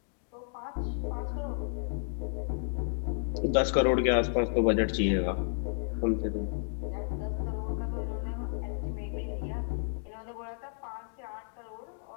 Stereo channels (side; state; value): right; silent; digital silence